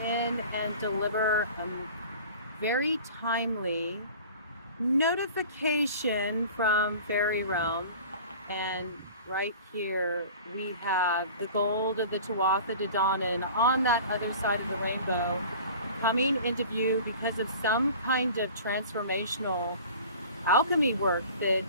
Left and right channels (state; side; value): inverted; both; correlation -0.42